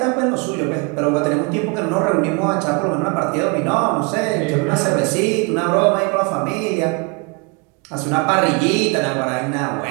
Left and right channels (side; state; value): left; quieter; 30.9 dB